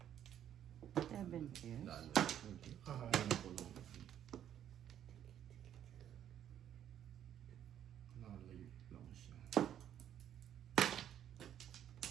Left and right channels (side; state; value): left; quieter; 10.3 dB